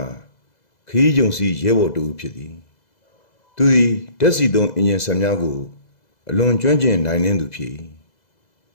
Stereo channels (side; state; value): right; late; 2.0 ms